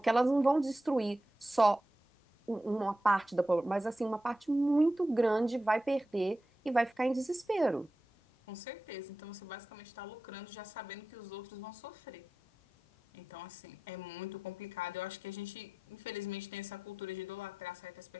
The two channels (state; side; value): normal; both; correlation 0.92